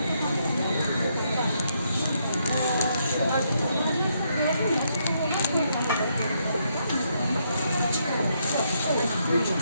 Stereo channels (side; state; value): both; inverted; correlation -0.76